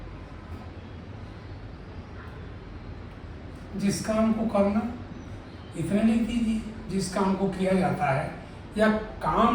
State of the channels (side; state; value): both; identical; correlation 1.00